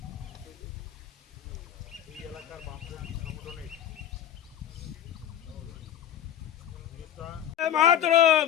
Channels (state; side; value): quieter; right; 10.6 dB